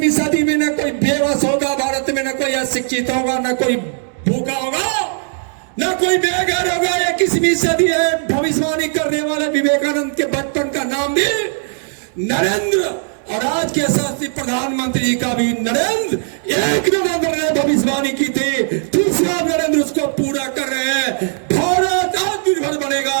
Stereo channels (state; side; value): silent; left; 68 dB below the other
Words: सदी में न कोई बेबस होगा भारत में, न कोई अशिक्षित होगा, न कोई भूखा होगा, न कोई बेघर होगा। 21वीं सदी है। भविष्यवाणी करने वाले विवेकानंद के बचपन का नाम भी नरेंद्र, और आज के यशस्वी प्रधानमंत्री जी का भी नरेंद्र। 1 नवंबर ने भविष्यवाणी की थी, दूसरा नरेंद्र उसको पूरा कर रहे हैं। भारत आत्मनिर्भर बनेगा,